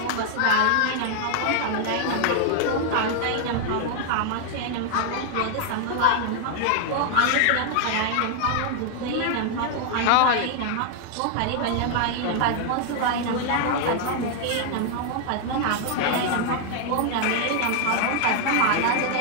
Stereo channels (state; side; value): different; both; correlation 0.00